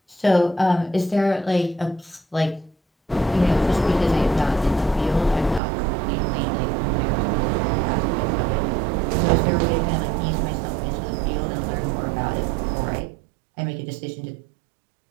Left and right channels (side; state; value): left; drops out; at 5.6 s